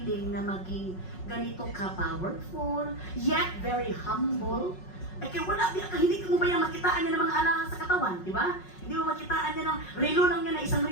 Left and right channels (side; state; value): right; late; 5.4 ms